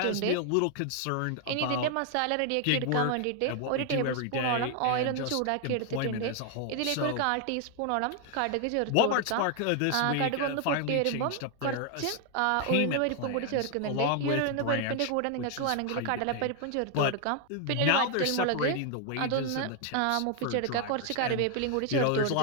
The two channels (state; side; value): different; both; correlation 0.00